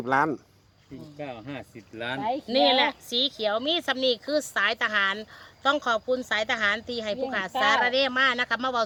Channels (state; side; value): identical; both; correlation 1.00